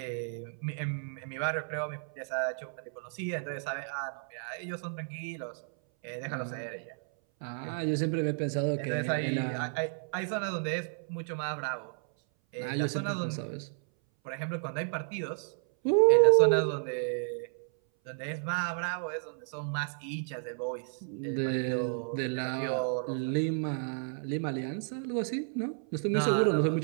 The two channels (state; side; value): silent; left; 56 dB below the other